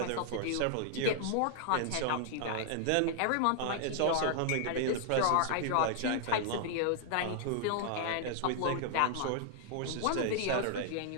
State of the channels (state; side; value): different; both; correlation -0.01